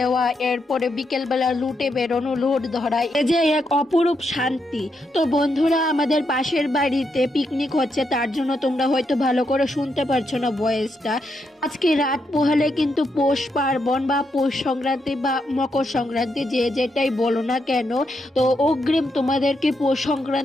এরপরে বিকেলবেলা লুটে বেরোনো, লুট ধরা, এই যে এক অপরূপ শান্তি। তো বন্ধুরা, আমাদের পাশের বাড়িতে পিকনিক হচ্ছে, তার জন্য তোমরা হয়তো ভালো করে শুনতে পারছো না ভয়েসটা। আজকে রাত পোহালে কিন্তু পৌষ পার্বণ বা পৌষ সংক্রান্তি বা মকর সংক্রান্তি, যে যেটাই বলো না কেন, তো অগ্রিম তোমাদেরকে পৌষ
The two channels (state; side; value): normal; both; correlation 0.81